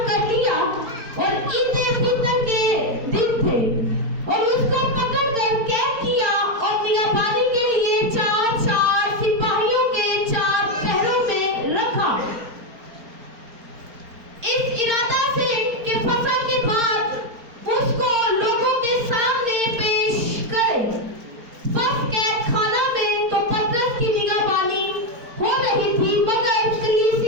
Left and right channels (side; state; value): left; late; 4.4 ms